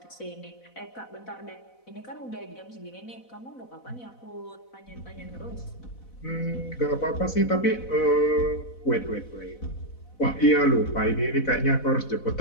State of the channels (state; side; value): late; right; 4.0 ms